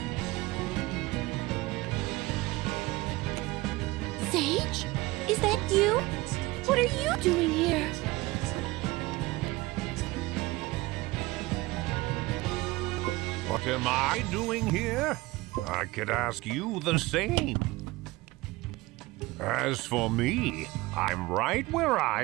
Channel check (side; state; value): left; quieter; 20.4 dB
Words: Sage? Is that you? What are you doing here? What am I doing here? I could ask you the same. As for me, I'm right where I